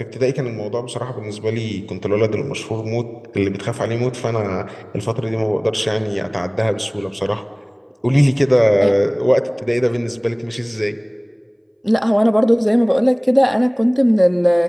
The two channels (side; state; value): both; identical; correlation 1.00